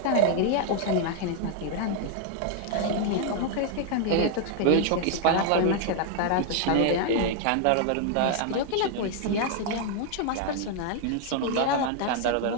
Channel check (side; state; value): both; different; correlation 0.00